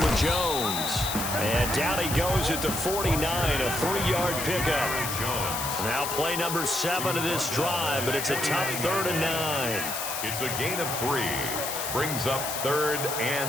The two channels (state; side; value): noise; left; hiss, 4 dB below the sound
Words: Jones. And down he goes at the 49, a 3-yard pickup. Now play number 7 of this drive, but it's a tough 3rd and 9. It's a gain of 3. Brings up 3rd